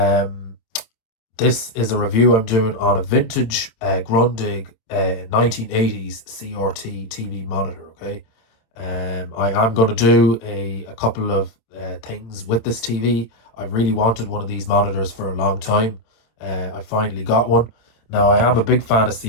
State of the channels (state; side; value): late; right; 26 ms